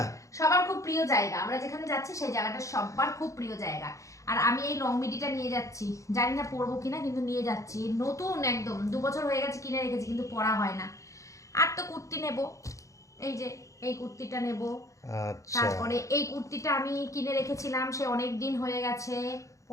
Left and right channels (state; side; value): late; right; 0.15 ms